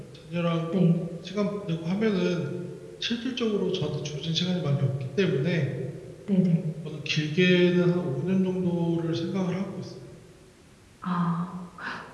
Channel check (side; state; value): both; identical; correlation 1.00